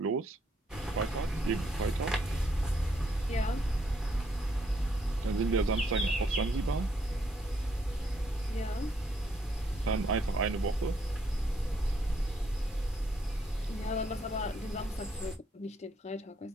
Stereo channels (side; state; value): both; normal; correlation 0.72